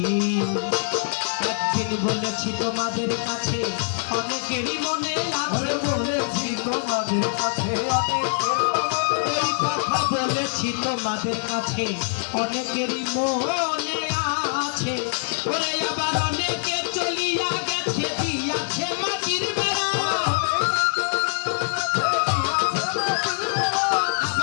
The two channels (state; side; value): silent; right; 63 dB below the other